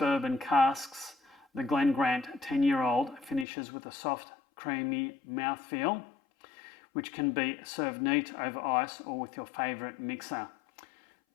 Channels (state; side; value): drops out; right; at 3.5 s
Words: casks, the Glen Grant 10-year-old finishes with a soft, creamy mouthfeel, which can be served neat over ice or with your favourite mixer.